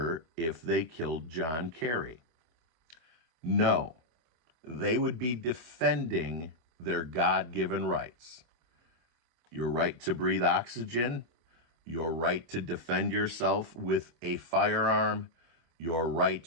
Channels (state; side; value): late; left; 26 ms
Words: if they killed John Kerry? No. They would be defending their God-given rights. Your right to breathe oxygen, your right to defend yourself with a firearm, your